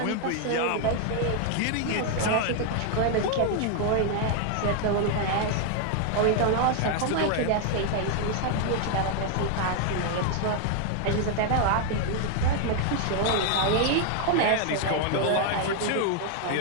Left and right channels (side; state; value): both; different; correlation 0.00